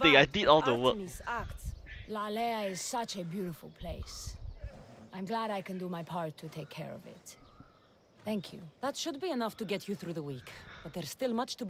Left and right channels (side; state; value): both; identical; correlation 1.00